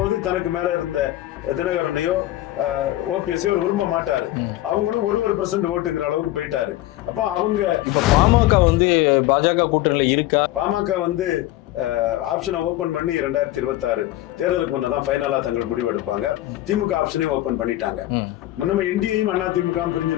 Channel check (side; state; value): right; quieter; 15.8 dB